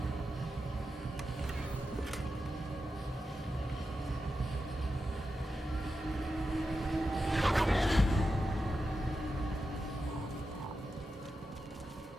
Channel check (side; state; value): both; normal; correlation 0.89